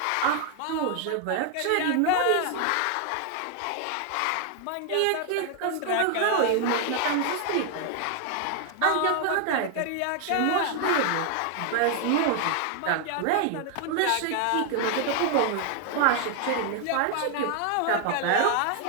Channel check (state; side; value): different; both; correlation 0.00